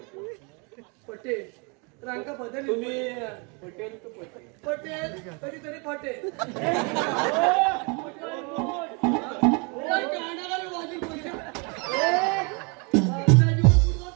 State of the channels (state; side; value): quieter; left; 33.0 dB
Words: पटेल रांका बदल. तुम्ही पटेल तर पटेल. पटेल कधीतरी पटेल.